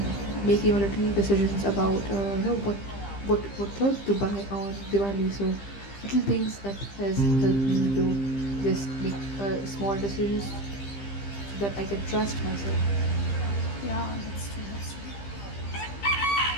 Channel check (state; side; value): late; right; 15 ms